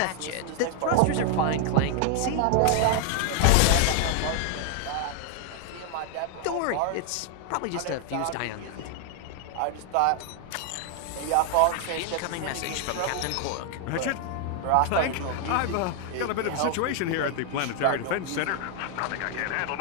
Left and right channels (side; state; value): both; different; correlation 0.00